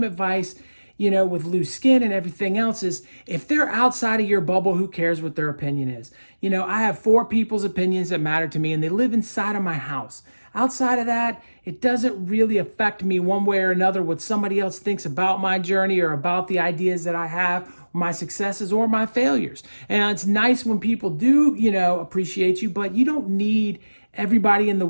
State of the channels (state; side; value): inverted; both; correlation -1.00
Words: advice with loose skin and everything else is if they're outside of your bubble, who cares what their opinion is? I have 4 people's opinions that matter to me and they live inside of my house. Outside of that, it doesn't really affect me one way or another what somebody else thinks about my journey or about the ideas that I have, my successes or my failures. And it's nice when people do, appreciate you, but you don't need everybody in the